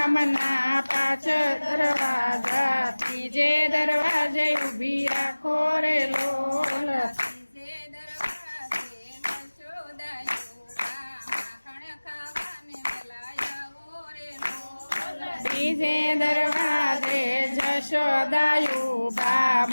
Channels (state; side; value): inverted; both; correlation -1.00